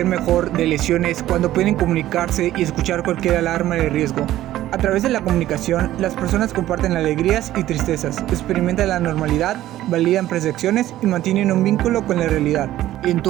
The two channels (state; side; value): quieter; left; 14.1 dB